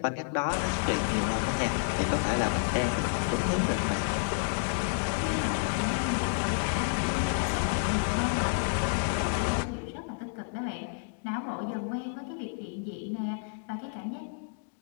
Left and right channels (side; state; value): right; silent; digital silence